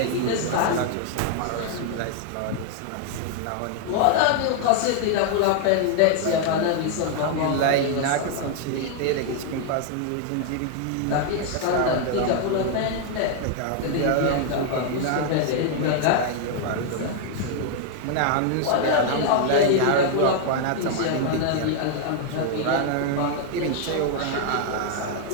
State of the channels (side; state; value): both; different; correlation 0.00